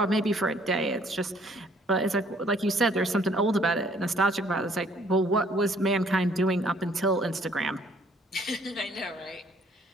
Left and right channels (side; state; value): both; normal; correlation 0.61